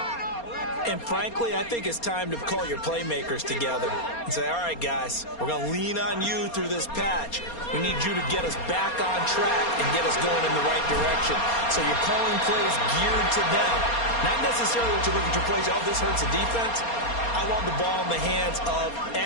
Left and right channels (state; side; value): late; right; 4.3 ms